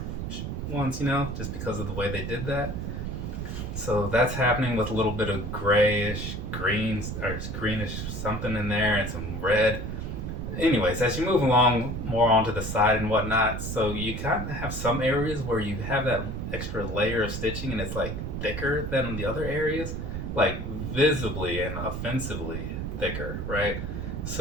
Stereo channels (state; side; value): noise; right; rumble, 4 dB below the sound